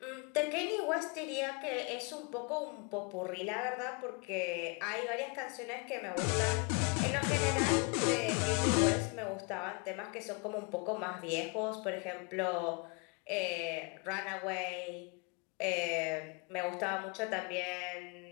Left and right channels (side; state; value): right; quieter; 31.9 dB